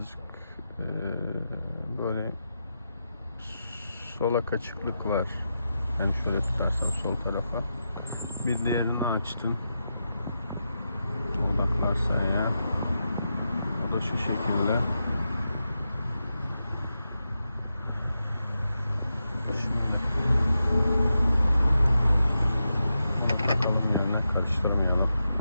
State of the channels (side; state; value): both; inverted; correlation -0.88